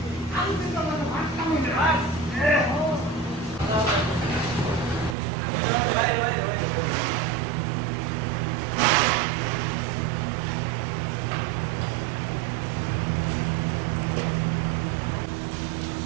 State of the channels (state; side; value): drops out; left; at 5.2 s